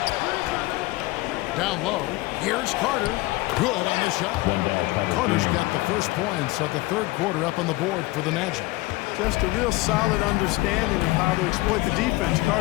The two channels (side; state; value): right; quieter; 20.8 dB